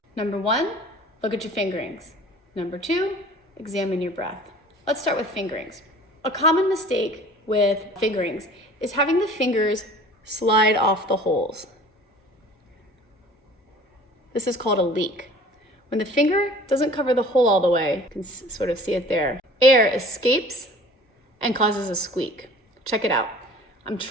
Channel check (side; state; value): both; normal; correlation 0.46